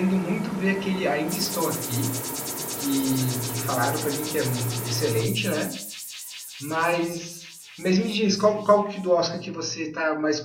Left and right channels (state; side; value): identical; both; correlation 1.00